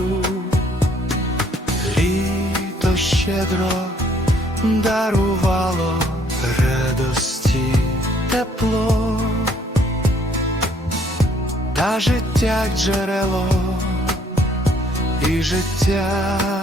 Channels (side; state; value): both; normal; correlation 0.64